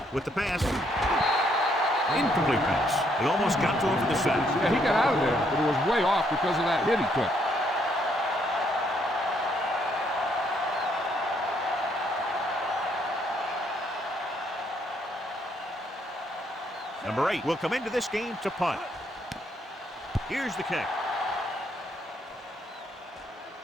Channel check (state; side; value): normal; both; correlation 0.71